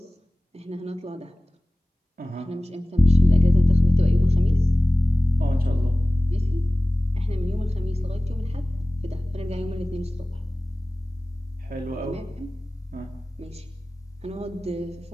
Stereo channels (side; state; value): both; normal; correlation 0.98